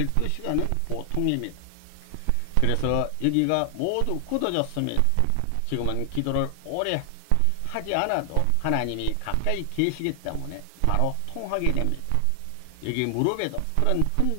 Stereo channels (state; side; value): different; both; correlation 0.00